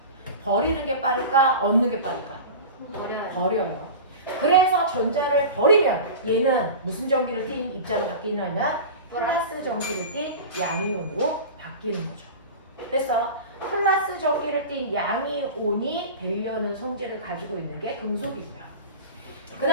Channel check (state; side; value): inverted; both; correlation -0.31